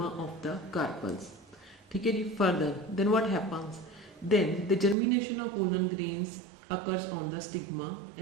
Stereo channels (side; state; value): left; drops out; at 5.0 s